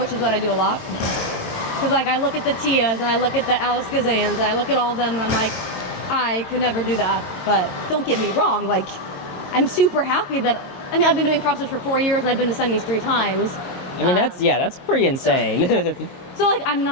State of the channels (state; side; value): late; right; 22 ms